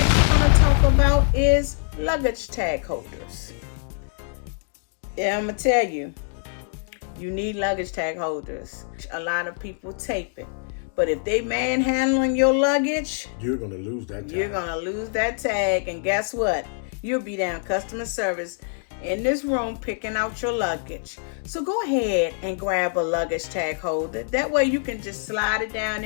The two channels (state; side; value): silent; right; digital silence